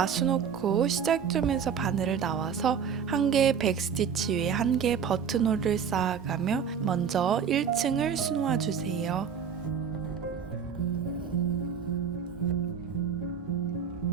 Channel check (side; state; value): left; quieter; 7.2 dB